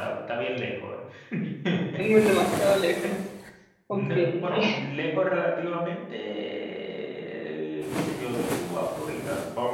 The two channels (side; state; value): both; identical; correlation 1.00